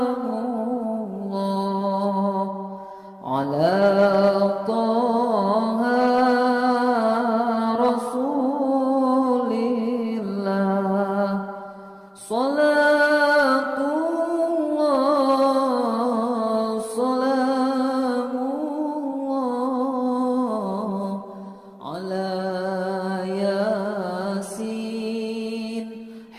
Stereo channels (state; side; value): identical; both; correlation 1.00